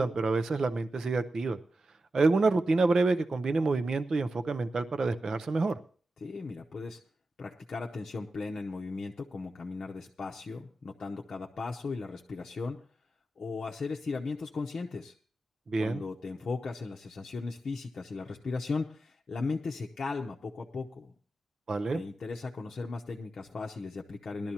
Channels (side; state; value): both; normal; correlation 0.91